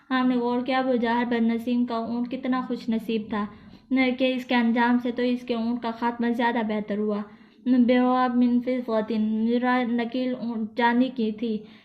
آپ نے غور کیا ابو جہل بن نصیم کا اونٹ کتنا خوش نصیب تھا کہ اس کے انجام سے تو اس کے اونٹ کا خاتمہ زیادہ بہتر ہوا۔ بیواب من فضۃ، نکیل چاندی کی تھی،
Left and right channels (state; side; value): identical; both; correlation 1.00